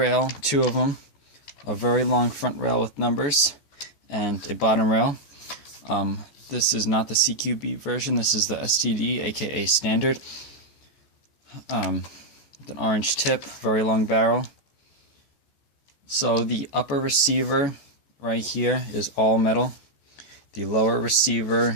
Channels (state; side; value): late; right; 14 ms